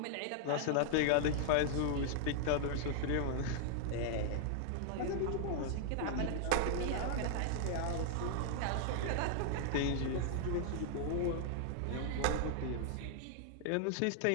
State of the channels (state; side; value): different; both; correlation -0.01